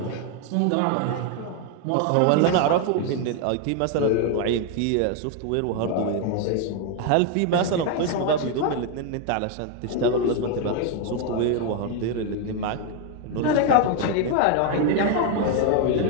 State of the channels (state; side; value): different; both; correlation 0.01